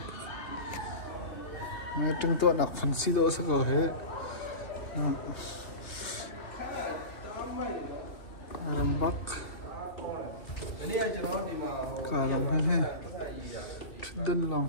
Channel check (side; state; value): right; late; 2.3 ms